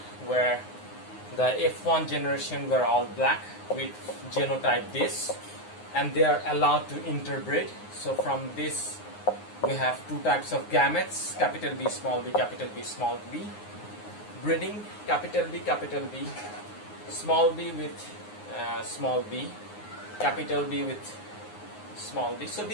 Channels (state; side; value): late; right; 9.6 ms